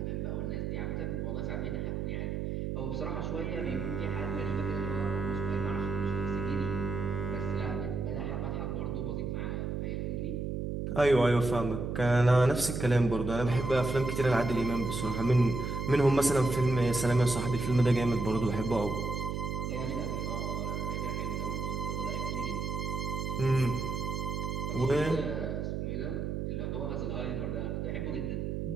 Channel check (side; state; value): right; noise; hum, 2 dB below the sound